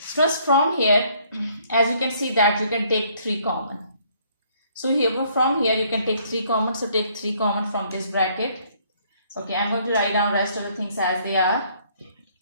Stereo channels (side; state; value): both; inverted; correlation -0.64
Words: from here, as you can see that you can take 3 common. So here from here you can take 3 common. So take 3 common from this bracket. Okay, I'm going to write down rest of the things as they are.